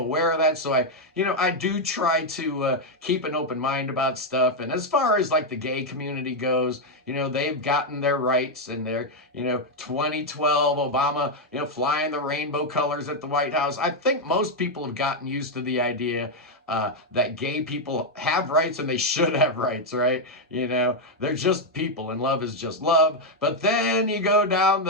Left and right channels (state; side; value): normal; both; correlation 0.02